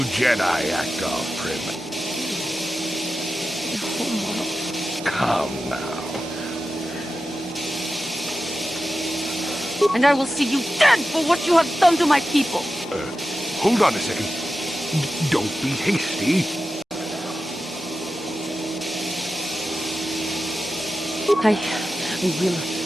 Jedi act all prim. Come now. And I will see you dead for what you have done to my people. Hold on a second. Don't be hasty. I will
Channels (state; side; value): normal; both; correlation 0.92